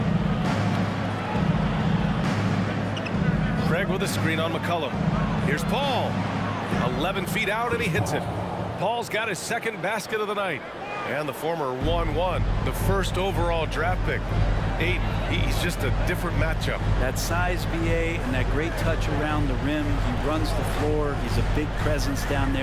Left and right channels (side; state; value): both; identical; correlation 1.00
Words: Craig with a screen on McCollum. Here's Paul. 11 feet out, and he hits it. Paul's got his second basket of the night. And the former 1-1, the first overall draft pick. Ayton, he's just a different matchup. That size, BA, and that great touch around the rim. He runs the floor. He's a big presence down